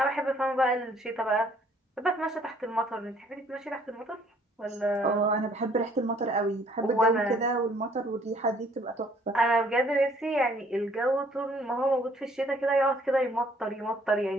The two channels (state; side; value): normal; both; correlation 0.61